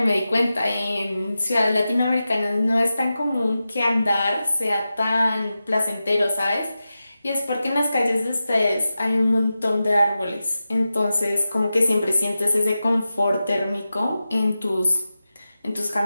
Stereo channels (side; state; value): both; inverted; correlation -0.93